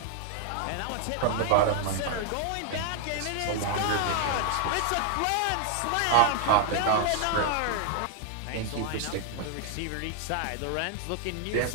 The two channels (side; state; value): both; different; correlation 0.00